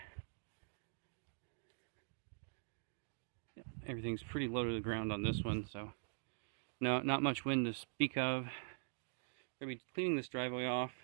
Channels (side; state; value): left; silent; digital silence